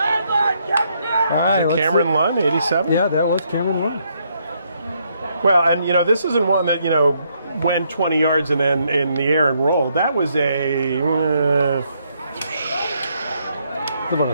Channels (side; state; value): both; inverted; correlation -0.74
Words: All right, let's Cameron see. Lunn, 87? Yeah, that was Cameron Lunn. Well, and this isn't one that, went 20 yards and then in the air and rolled. That was a About